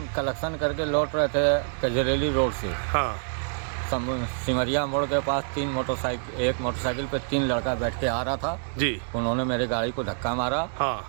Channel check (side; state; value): left; silent; 61 dB below the other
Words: कलेक्शन करके लौट रहे थे कजरेली रोड से। हाँ। सिमरिया मोड़ के पास एक मोटरसाइकिल पे 3 लड़का बैठ के आ रहा था जी। उन्होंने मेरी गाड़ी को धक्का मारा।